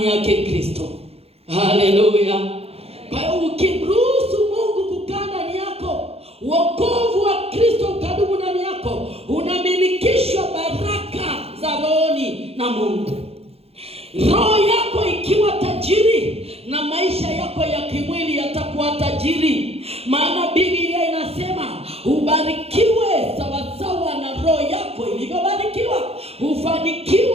yake Kristo. Haleluya. Kwa hiyo ukimruhusu Mungu kukaa ndani yako, wokovu wa Kristo ukadumu ndani yako, unamilikishwa baraka za rohoni na Mungu. Roho yako ikiwa tajiri na maisha yako ya kimwili yatakuwa tajiri. Maana Biblia inasema ubarikiwe sawasawa na roho yako ilivyobarikiwa,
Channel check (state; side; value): late; left; 0.29 ms